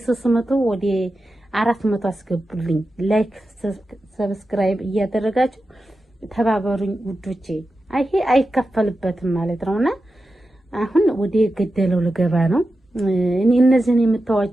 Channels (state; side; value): normal; both; correlation 0.91